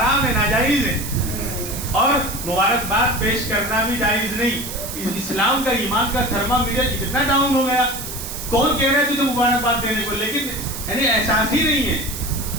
ہے، ناجائز ہے. اور مبارکباد پیش کرنا بھی جائز نہیں. اسلام کا، ایمان کا تھرمامیٹر اتنا ڈاؤن ہو گیا. کون کہہ رہا ہے تجھے مبارکباد دینے کو، لیکن یعنی احساس ہی نہیں ہے.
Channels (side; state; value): right; noise; hiss, 8 dB below the sound